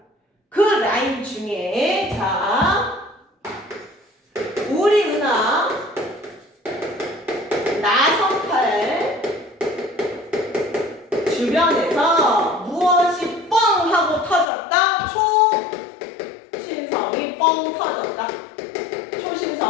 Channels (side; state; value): right; drops out; at 14.5 s